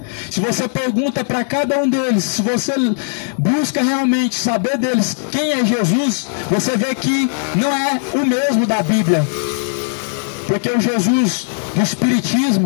Se você pergunta para cada um deles, se você busca realmente saber deles quem é Jesus, você vê que não é o mesmo da Bíblia. Porque o Jesus do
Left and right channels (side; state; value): right; silent; digital silence